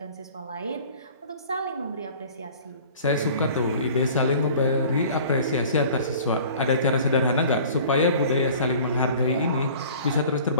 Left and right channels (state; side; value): inverted; both; correlation -0.46